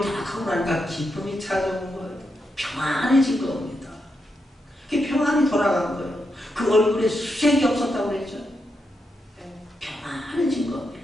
다 하고 나니까 기쁨이 찾아온 거예요. 평안해진 겁니다. 그게 평안이 돌아간 거예요. 그 얼굴에 수색이 없었다고 그랬죠. 평안해진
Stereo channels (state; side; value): normal; both; correlation 0.84